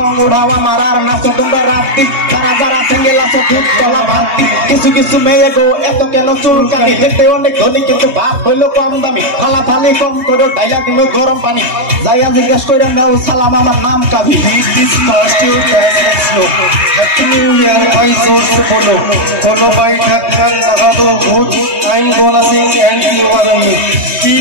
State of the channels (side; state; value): left; late; 3.2 ms